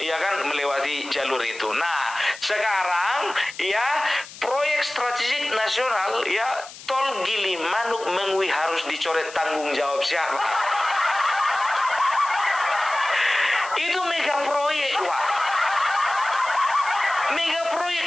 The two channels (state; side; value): noise; left; hiss, 16 dB below the sound